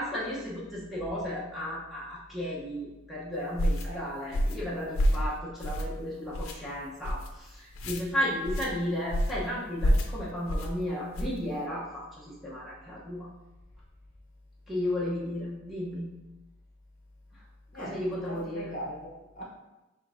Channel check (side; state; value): both; normal; correlation 0.73